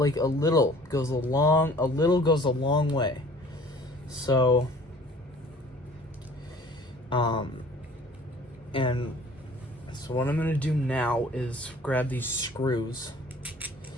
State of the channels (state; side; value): normal; both; correlation 0.51